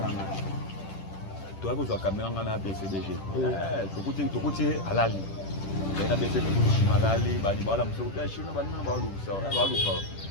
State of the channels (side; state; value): right; late; 10 ms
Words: là. Toi vous avez caméra na BCDG. Tu côté halal. Na BCDG chinois halal, ba ni ba la mso ta chinois ba na ba lu ça. Ba lu ça.